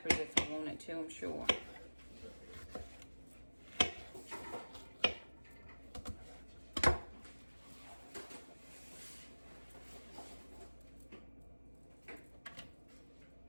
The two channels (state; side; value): inverted; both; correlation -1.00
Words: if I wanted to, I'm sure.